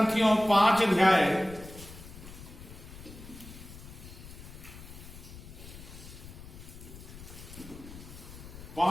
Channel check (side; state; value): left; noise; rumble, 15 dB below the sound